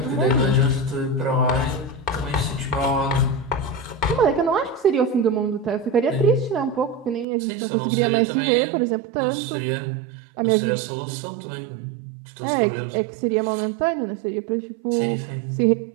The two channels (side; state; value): left; drops out; at 7.2 s